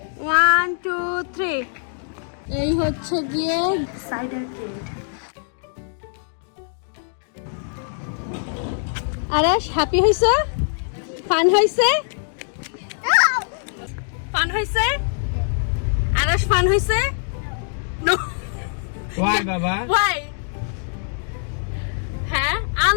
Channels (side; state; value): right; silent; digital silence